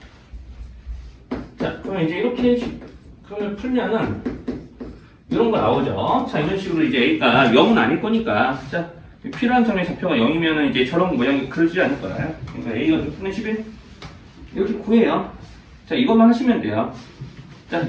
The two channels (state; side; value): identical; both; correlation 1.00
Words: 자, 그러면 이제 이렇게 그러면 풀면은 이런 거 나오죠. 자, 이런 식으로 이제 A가 0은 아닐 거니까 자, 필요한 점의 좌표가 0이면은 이제 저런 모양이 그려지지 않을 거예요. 그러니까 A가 6분의 11 이렇게 구해요. 자, 이것만 하시면 돼요. 자,